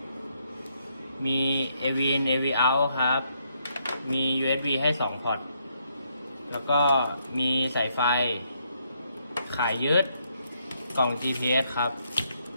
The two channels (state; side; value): inverted; both; correlation -0.75